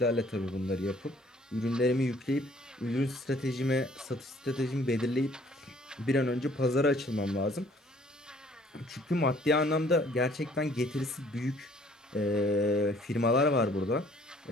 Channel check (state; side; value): normal; both; correlation 0.59